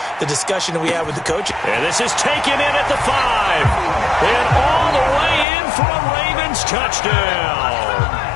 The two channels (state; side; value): drops out; right; at 5.5 s